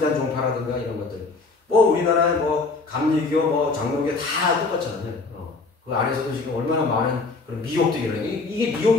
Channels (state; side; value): quieter; right; 3.9 dB